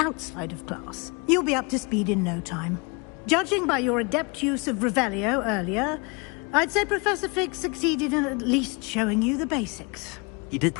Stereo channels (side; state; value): right; quieter; 30.4 dB